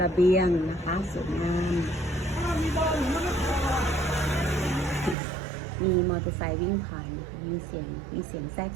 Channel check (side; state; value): left; drops out; at 5.2 s